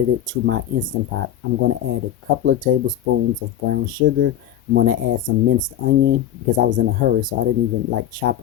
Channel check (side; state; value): right; quieter; 11.0 dB